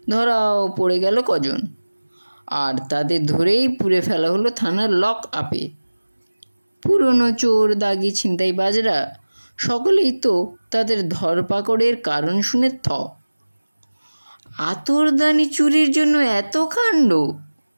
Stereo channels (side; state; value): both; inverted; correlation -1.00